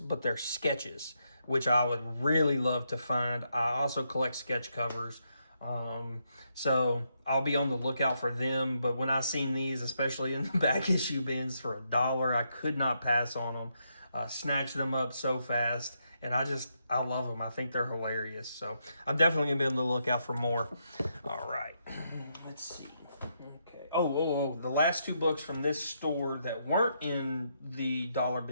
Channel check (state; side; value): inverted; both; correlation -0.79